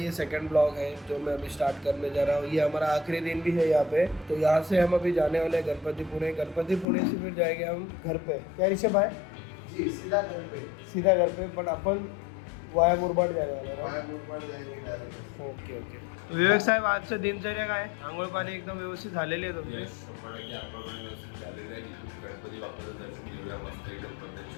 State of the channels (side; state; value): right; drops out; at 6.9 s